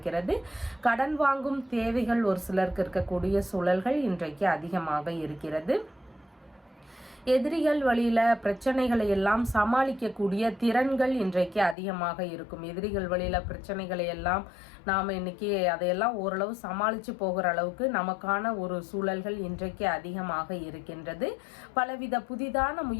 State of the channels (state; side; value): drops out; right; at 11.8 s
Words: கடன் வாங்கும் தேவைகள் ஒரு சிலருக்கு இருக்கக்கூடிய சூழல்கள் இன்றைக்கு அதிகமாக இருக்கிறது. எதிரிகள் வழியில பிரச்சனைகளை எல்லாம் சமாளிக்கக்கூடிய திறன்கள் இன்றைக்கு அதிகமாக இருக்கும். எதிரிகள் வழியில பிரச்சனைகளை எல்லாம் நாம இன்னைக்கு அதையெல்லாம் ஓரளவு சமாளிச்சு போகிற அளவுக்கு நமக்கான ஒரு சூழல்கள் இன்றைக்கு அதிகமாக இருக்கின்றது. பலவித புதிதான